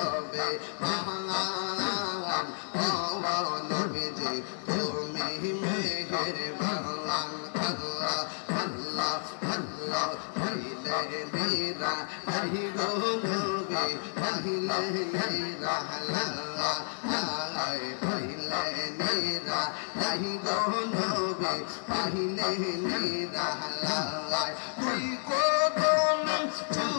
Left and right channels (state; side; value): silent; right; digital silence